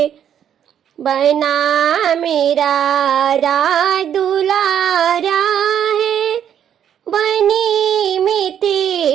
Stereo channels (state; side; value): quieter; left; 9.4 dB